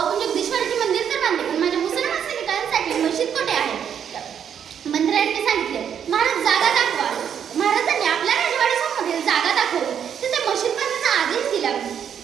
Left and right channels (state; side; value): quieter; left; 8.4 dB